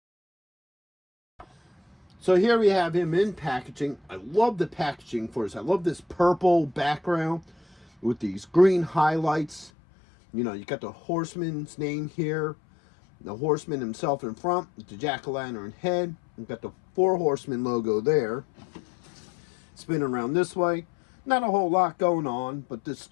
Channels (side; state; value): right; drops out; at 9.7 s